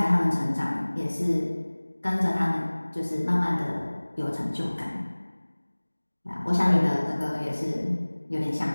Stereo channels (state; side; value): inverted; both; correlation -1.00